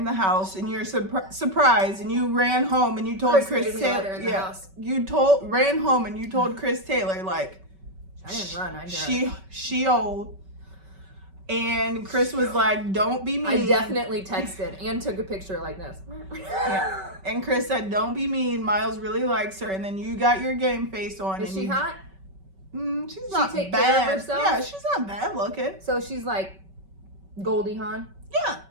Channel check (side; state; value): left; late; 5.2 ms